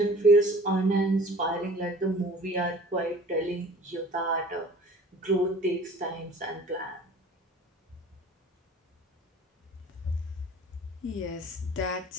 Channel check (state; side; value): normal; both; correlation 0.46